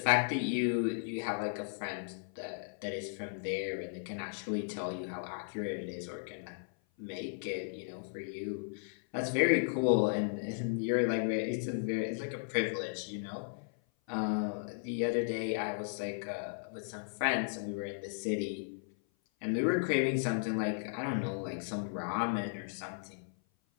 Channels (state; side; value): silent; right; 54 dB below the other